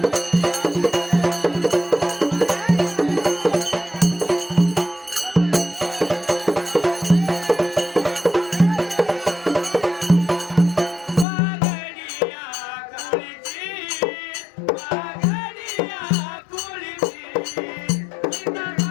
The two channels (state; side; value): drops out; right; at 11.2 s